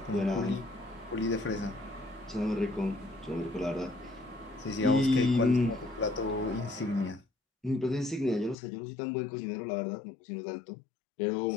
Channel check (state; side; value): drops out; right; at 8.6 s